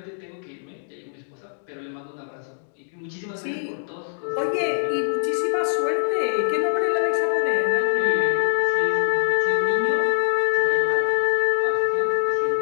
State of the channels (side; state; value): right; silent; digital silence